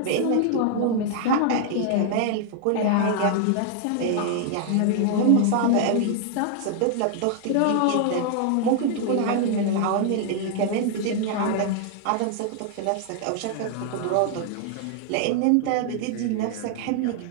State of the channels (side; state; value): both; different; correlation 0.00